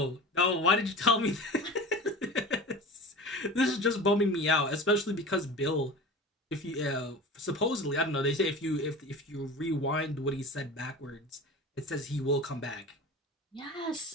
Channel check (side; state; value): both; normal; correlation 0.34